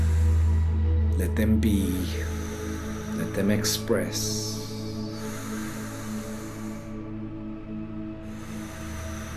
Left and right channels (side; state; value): both; identical; correlation 1.00